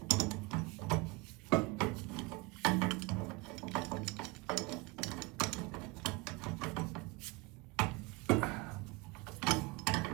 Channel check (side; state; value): left; quieter; 25.1 dB